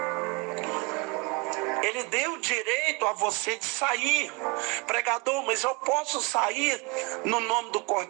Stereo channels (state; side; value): quieter; left; 29.5 dB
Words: Ele deu direito a você de sair. Pregador, mas eu posso sair no nome do